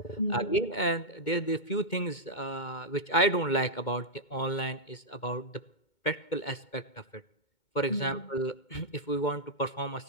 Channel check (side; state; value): right; late; 2.2 ms